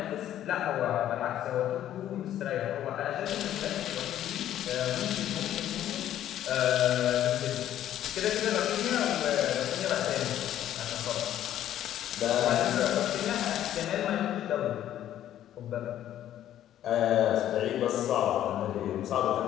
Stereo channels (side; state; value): right; quieter; 11.8 dB